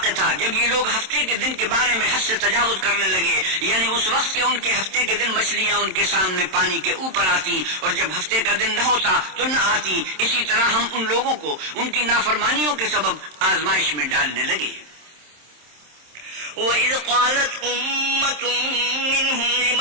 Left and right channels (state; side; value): late; left; 27 ms